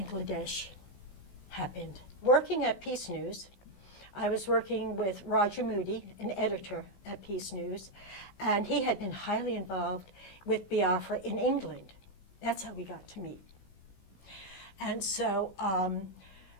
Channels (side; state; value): right; late; 16 ms